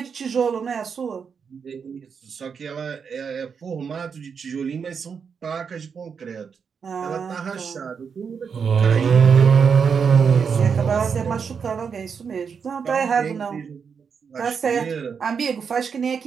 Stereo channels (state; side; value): quieter; left; 6.3 dB